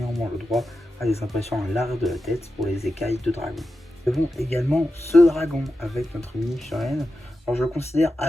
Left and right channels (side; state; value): both; normal; correlation 0.90